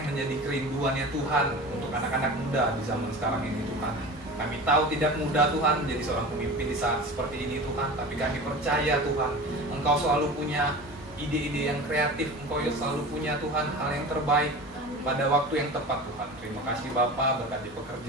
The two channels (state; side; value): normal; both; correlation 0.34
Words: menjadi kerinduannya Tuhan untuk anak-anak muda di zaman sekarang ini Tuhan. Kami tahu tidak mudah Tuhan menjadi seorang pemimpin di saat seperti ini Tuhan, tapi kami percaya Tuhan, Engkau selalu punya ide-ide yang kreatif, Engkau selalu punya Tuhan hal yang terbaik pada waktu yang tepat Tuhan. Terima kasih Bapa, berkati